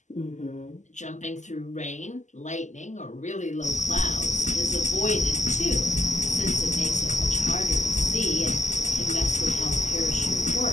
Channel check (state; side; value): late; right; 0.34 ms